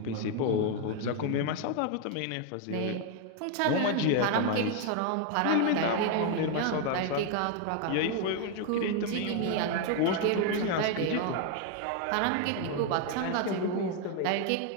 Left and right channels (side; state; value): both; different; correlation 0.01